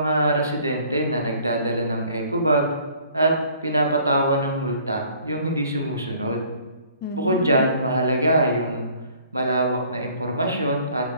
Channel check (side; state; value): both; inverted; correlation -0.56